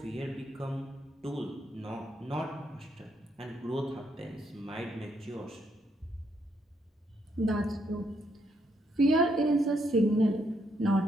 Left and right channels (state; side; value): normal; both; correlation 0.75